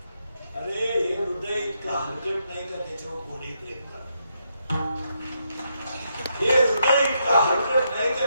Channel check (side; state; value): both; inverted; correlation -0.79